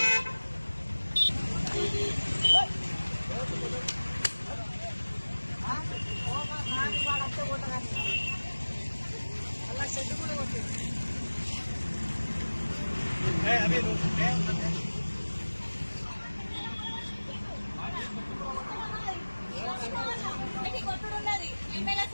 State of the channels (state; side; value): inverted; both; correlation -1.00